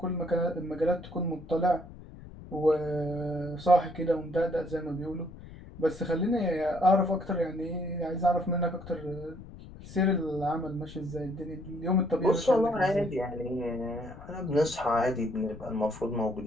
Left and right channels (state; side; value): noise; left; rumble, 16 dB below the sound